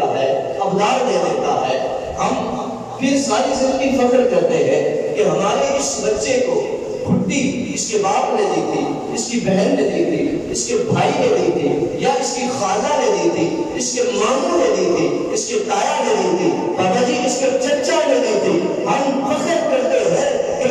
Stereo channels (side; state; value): both; identical; correlation 1.00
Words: ہے، ابدار دے دیتا ہے۔ ہم پھر ساری زندگی فخر کرتے ہیں کہ ہمارے اس بچے کو گھٹی اس کے باپ نے دی تھی، اس کی بہن نے دی تھی، اس کے بھائی نے دی تھی، یا اس کی خالہ نے دی تھی، اس کے ماموں نے دی تھی، اس کے تایا نے دی تھی، بابا جی اس کے چچا نے دی تھی۔ ہم فخر کرتے ہیں